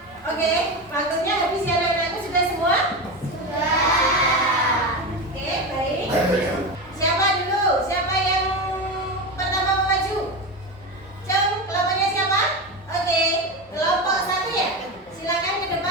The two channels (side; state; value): both; normal; correlation 0.19